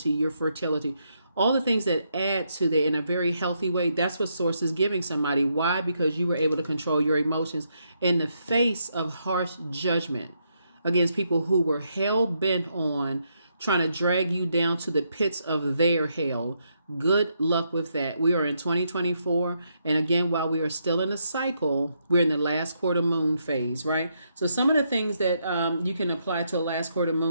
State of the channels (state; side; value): inverted; both; correlation -0.78